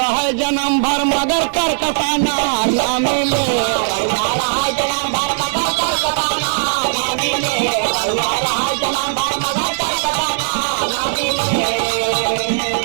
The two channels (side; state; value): left; silent; digital silence